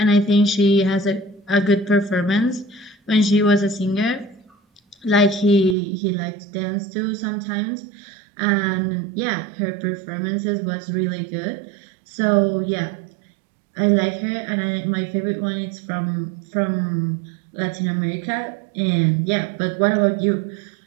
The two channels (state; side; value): drops out; left; at 5.8 s